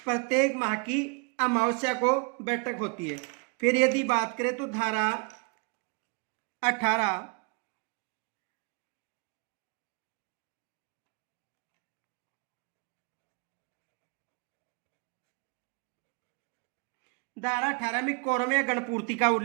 प्रत्येक माह की अमावस्या को बैठक होती है। फिर यदि बात करें तो धारा 18 धारा 18 में कोरम या गणपूर्ति का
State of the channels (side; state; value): left; quieter; 34.0 dB